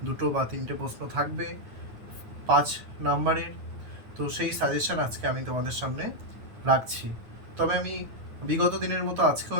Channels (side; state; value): left; late; 9.2 ms